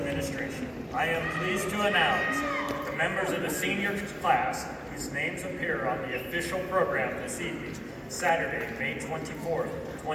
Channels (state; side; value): identical; both; correlation 1.00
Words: I am pleased to announce that the members of the senior class whose names appear on the official program this evening, Saturday, May 24th,